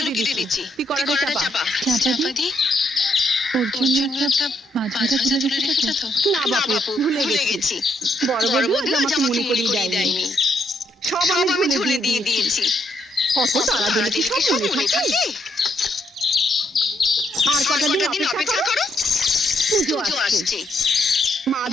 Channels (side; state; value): both; normal; correlation 0.75